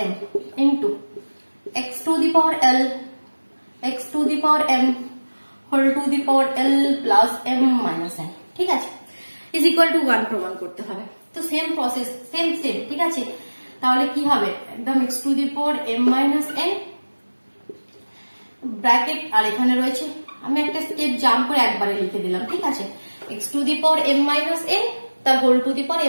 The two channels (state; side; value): inverted; both; correlation -1.00